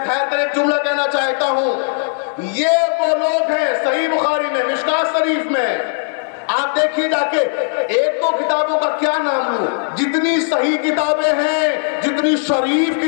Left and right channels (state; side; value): silent; right; digital silence